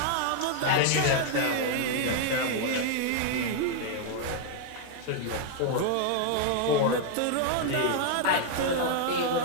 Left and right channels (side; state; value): both; different; correlation 0.00